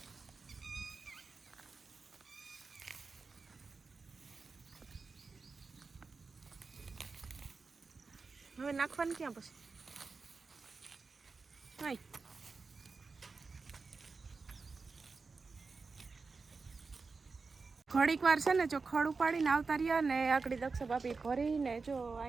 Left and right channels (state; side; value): quieter; left; 4.4 dB